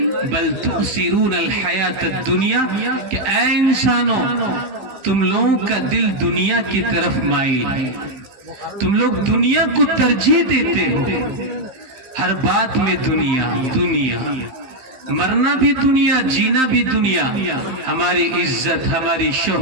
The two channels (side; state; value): left; late; 15 ms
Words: بل تؤثرون الحیات الدنیا، کہ اے انسانوں، تم لوگوں کا دل دنیا کی طرف مائل ہے، تم لوگ دنیا کو ترجیح دیتے ہو. ہر بات میں دنیا دنیا، مرنا بھی دنیا، جینا بھی دنیا. ہماری عزت، ہماری